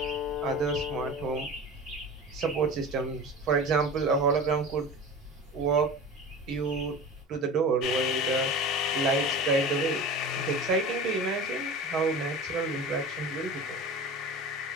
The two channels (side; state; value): both; normal; correlation 0.34